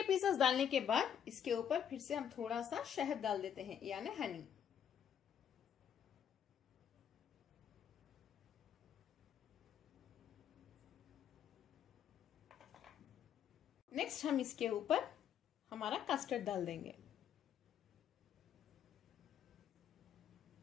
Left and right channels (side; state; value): right; quieter; 8.9 dB